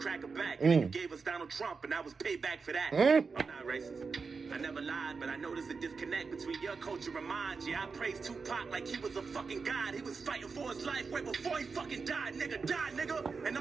back. And you gave us Donald Trump, and I was payback for that. I'm not racist. I never lied, but I noticed a disconnect between your culture and mine. Yeah, I praised Tupac like he was a fucking god. He was fighting for his life way before he fucking died, nigga. And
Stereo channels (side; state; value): left; quieter; 4.9 dB